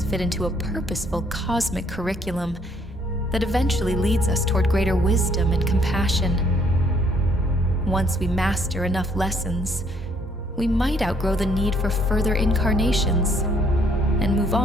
fit into a purposeful cosmic curriculum that eventually leads us toward greater wisdom and compassion. Once we master enough lessons, we might outgrow the need for further incarnations and move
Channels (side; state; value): both; normal; correlation 0.66